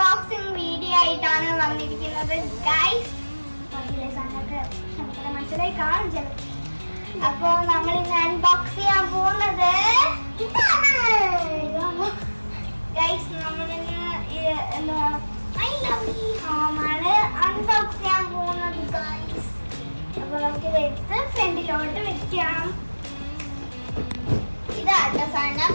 വീഡിയോ ആയിട്ടാണ് വന്നിരിക്കുന്നത് ഗൈസ്. മനസ്സിലായി കാണും ചില. അപ്പോ നമ്മൾ ഇന്ന് അൺബോക്സ് ചെയ്യാൻ പോകുന്നത് ഗൈസ്. നമ്മളിന്ന് ഐ ലവ് യു ഹോമാണ് അൺബോക്സ് ചെയ്യാൻ പോകുന്നത് ഗൈസ്. അപ്പൊ നമുക്കിത് എടുത്ത് ഫ്രണ്ടിലോട്ട് വെക്കാം. ഇതാട്ടോ സാധനം.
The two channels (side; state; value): both; inverted; correlation -1.00